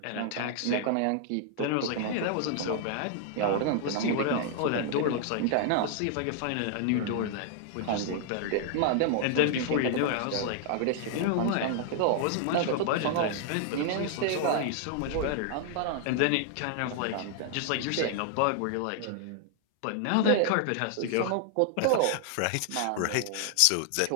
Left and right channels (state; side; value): different; both; correlation 0.00